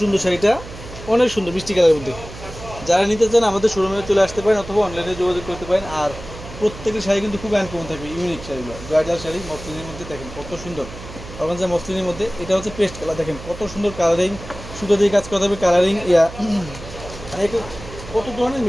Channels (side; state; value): right; noise; hum, 14 dB below the sound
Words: শাড়িটা, অনেক সুন্দর মিষ্টি কালারের মধ্যে। যারা নিতে চান আমাদের শোরুমে চলে আসতে পারেন অথবা অনলাইনে যোগাযোগ করতে পারেন। আর প্রত্যেকটি শাড়ি কিন্তু খুব আনকমন থাকবে, ইউনিক শাড়িগুলো, ব্রাইডাল শাড়ি মসলিনের মধ্যে। দেখেন কত সুন্দর অর্গানজা মসলিনের মধ্যে। এটা হচ্ছে পেস্ট কালার, দেখেন কত সুন্দর কালারিং, সুতো দিয়ে কাজ করা থাকবে কালারিং। কত ধরনের